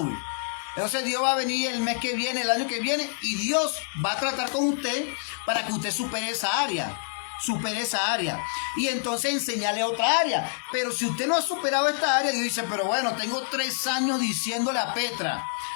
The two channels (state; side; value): silent; right; digital silence